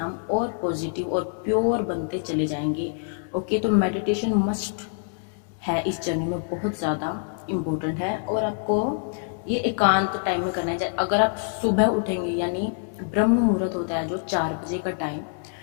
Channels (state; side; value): silent; right; digital silence